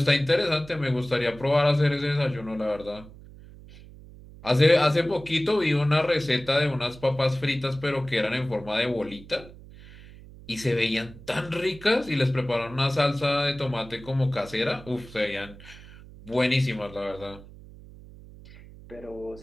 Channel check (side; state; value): right; noise; hum, 19 dB below the sound